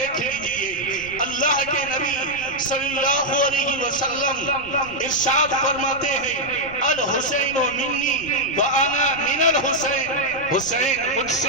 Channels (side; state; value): right; noise; rumble, 19 dB below the sound